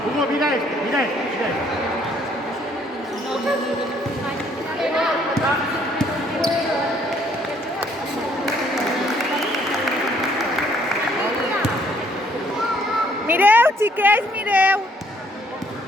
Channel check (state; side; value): normal; both; correlation 0.65